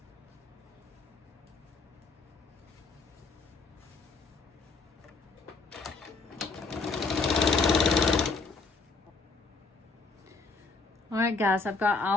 Alright guys, I've got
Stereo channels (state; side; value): quieter; right; 4.1 dB